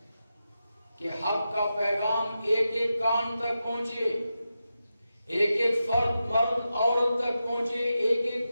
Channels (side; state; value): both; inverted; correlation -0.90